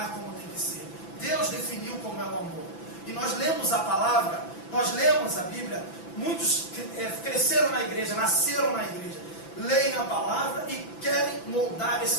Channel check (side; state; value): right; late; 5.9 ms